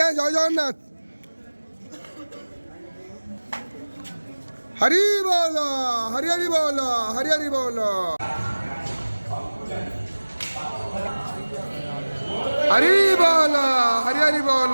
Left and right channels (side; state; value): both; inverted; correlation -1.00